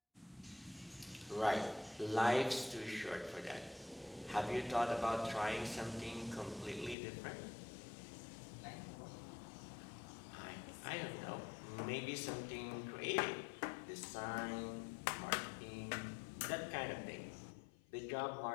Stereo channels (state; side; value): drops out; right; at 7.0 s